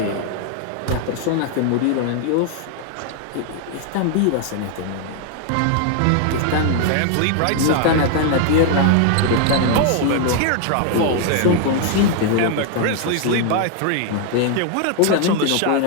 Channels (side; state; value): both; different; correlation 0.00